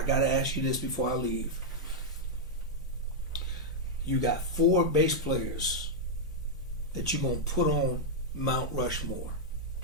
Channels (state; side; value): normal; both; correlation -0.04